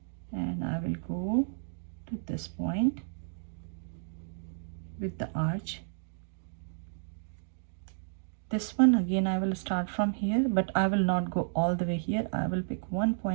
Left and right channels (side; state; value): left; silent; digital silence